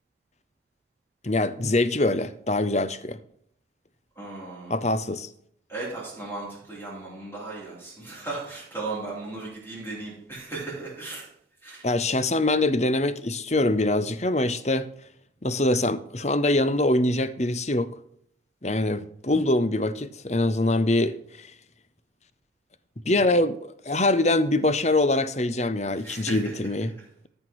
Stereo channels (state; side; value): normal; both; correlation 0.42